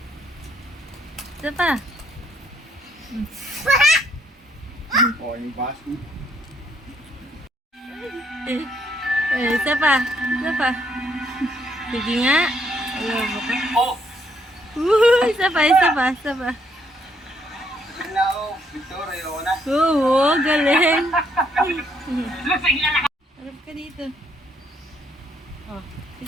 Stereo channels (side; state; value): both; normal; correlation 0.70